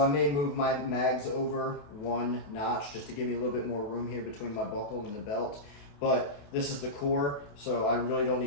may move my mags over 1 notch just to give me a little bit more room here between my buckle and the belt. But this is the core, so I really don't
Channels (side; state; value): right; late; 28 ms